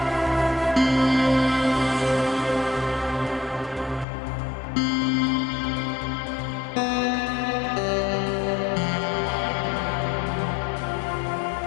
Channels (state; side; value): drops out; right; at 4.0 s